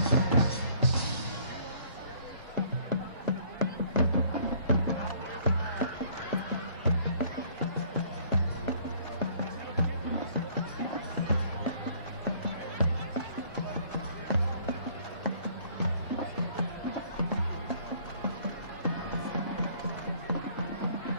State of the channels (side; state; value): both; inverted; correlation -0.59